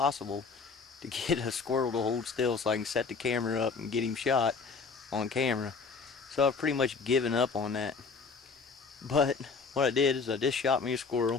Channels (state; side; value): quieter; right; 4.9 dB